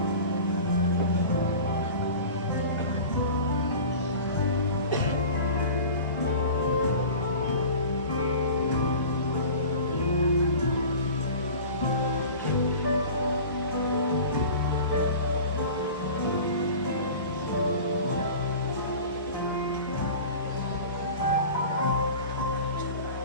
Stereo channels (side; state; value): both; inverted; correlation -0.38